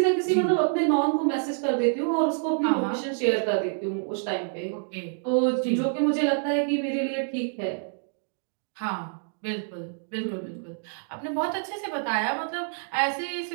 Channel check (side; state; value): left; silent; digital silence